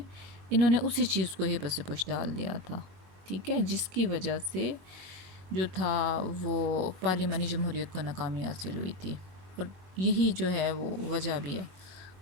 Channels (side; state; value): left; late; 22 ms